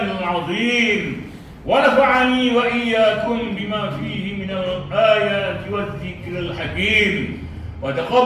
azim wa nafa'ani wa iyyakum bima fihi minal ayati waz zikril hakim wa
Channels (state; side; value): identical; both; correlation 1.00